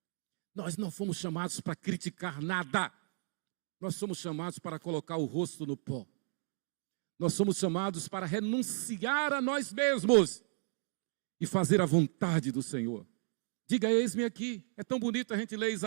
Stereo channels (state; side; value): silent; left; 55 dB below the other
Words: Nós não fomos chamados para criticar nada. Nós somos chamados para colocar o rosto no pó. Nós somos chamados para renunciar a nós mesmos e fazer a vontade do Senhor. Diga, eis-me aqui. É tão bonito a gente ler